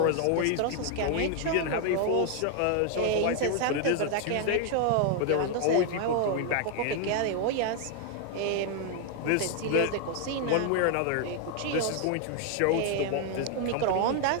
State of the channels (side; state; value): both; different; correlation 0.00